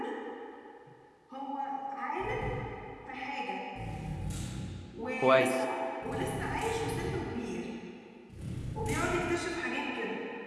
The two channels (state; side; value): identical; both; correlation 1.00